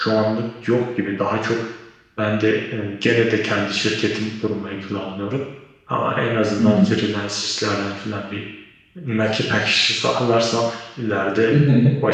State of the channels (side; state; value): both; identical; correlation 1.00